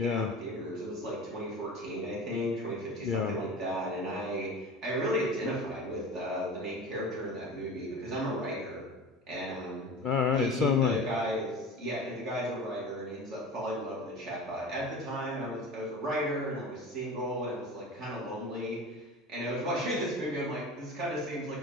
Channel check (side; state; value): both; normal; correlation 0.34